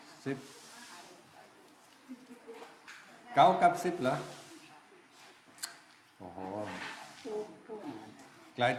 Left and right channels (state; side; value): identical; both; correlation 1.00